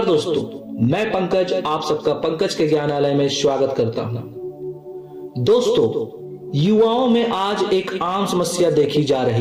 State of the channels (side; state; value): both; identical; correlation 1.00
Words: दोस्तों, मैं पंकज आप सबका पंकज के ज्ञानालय में स्वागत करता हूं। दोस्तों, युवाओं में आज एक आम समस्या देखी जा